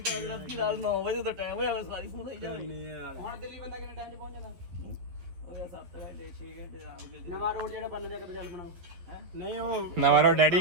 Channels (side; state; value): left; late; 11 ms